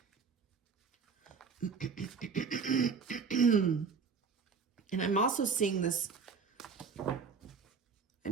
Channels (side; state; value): left; quieter; 5.4 dB